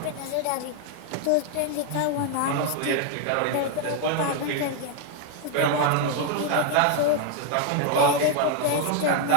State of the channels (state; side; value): different; both; correlation 0.01